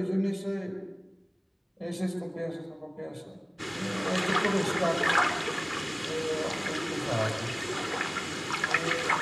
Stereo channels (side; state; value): both; identical; correlation 1.00